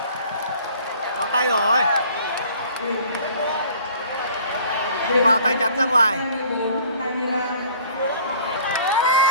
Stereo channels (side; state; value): both; inverted; correlation -0.53